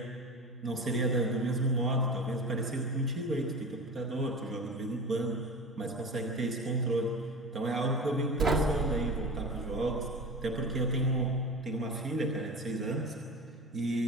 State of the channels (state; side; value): normal; both; correlation 0.31